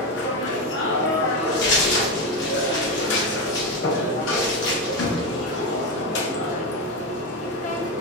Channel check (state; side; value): normal; both; correlation 0.13